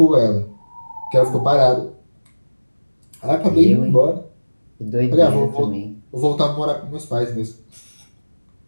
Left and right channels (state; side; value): inverted; both; correlation -1.00